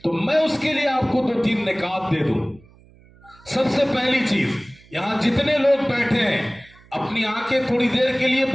تو میں اس کے لیے آپ کو 2-3 نکات دے دوں. سب سے پہلی چیز، یہاں جتنے لوگ بیٹھے ہیں اپنی آنکھیں تھوڑی دیر کے لیے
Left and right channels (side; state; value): right; noise; hum, 27 dB below the sound